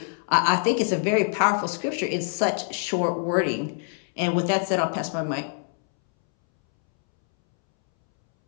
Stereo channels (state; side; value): silent; right; 62 dB below the other